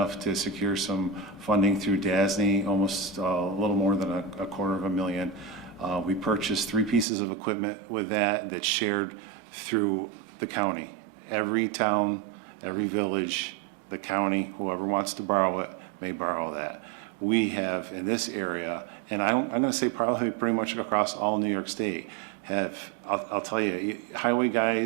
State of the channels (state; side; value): drops out; left; at 7.1 s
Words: to secure some funding through DASNY, almost a little more than a $250,000. We purchased 3 pieces of equipment with that's shared through the county. Every town, every village, the county, whoever wants to borrow it may borrow that. We have in this area, and I'm going to say probably pretty much across all New York State, I'll tell you, highway